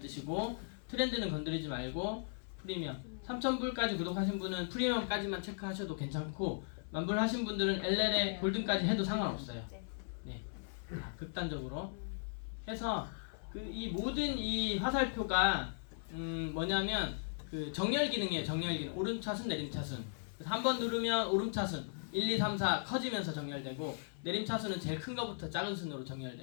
뜻이고 트렌드는 건드리지 말고 프리미엄 3,000불까지 구독하신 분은 프리미엄까지만 체크하셔도 괜찮고 만불 하신 분들은 LL에 골든까지 해도 상관없어요. 네, 극단적으로 해서 이 모든 이 화살표가 뭐냐면 그 정렬 기능이에요. 정렬 기능. 오름차순 내림차순. 한 번 누르면 오름차순 1, 2, 3, 4 커지면서 정렬되고 내림차순은 제일 큰 거부터 작은 순으로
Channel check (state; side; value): silent; right; 53 dB below the other